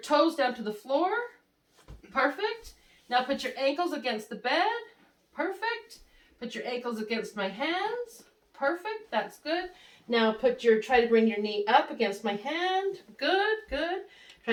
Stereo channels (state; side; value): identical; both; correlation 1.00